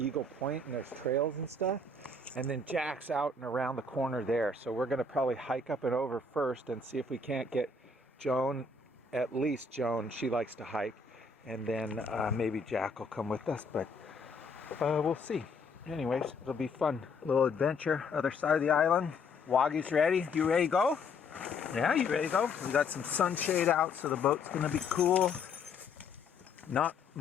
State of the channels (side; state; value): right; quieter; 3.7 dB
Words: Point and there's trails and stuff, and then Jack's out and around the corner there, so we're going to probably hike up and over first and see if we can't get Joan, at least Joan, she likes to hike, and then maybe Jack will come with us, but we'll see. Anyways, it'll be fun, little adventure. Other side of the island. Waggy's ready. You ready to go? Yeah, you ready to go? We got some sunshade out, so the boat's going to be cool. Not